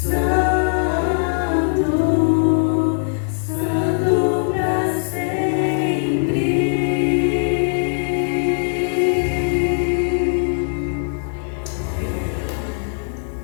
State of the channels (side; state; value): right; silent; digital silence